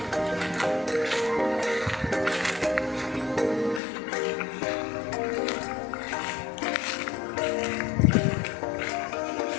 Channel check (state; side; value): drops out; right; at 3.8 s